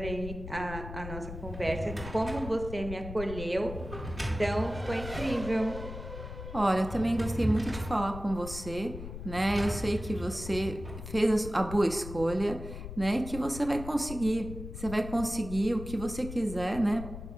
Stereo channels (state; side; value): noise; left; rumble, 9 dB below the sound